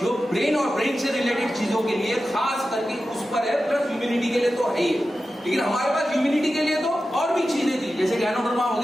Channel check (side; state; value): both; normal; correlation 0.93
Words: जो ब्रेन और ब्रेन से रिलेटेड चीजों के लिए खास करके उस पर है, प्लस ह्यूमिनिटी के लिए तो है ही। लेकिन हमारे पास ह्यूमिनिटी के लिए तो और भी चीजें थी, जैसे गैनोडर्मा